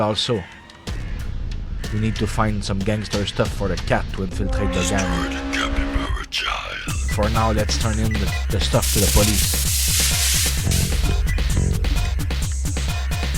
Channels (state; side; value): identical; both; correlation 1.00